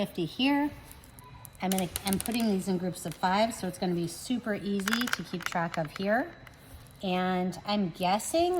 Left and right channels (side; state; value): both; identical; correlation 1.00